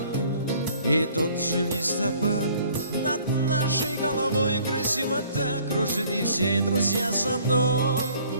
И тот же листопад над нашей головой красиво так кружит, и все друзья со мной.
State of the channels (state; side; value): inverted; both; correlation -0.57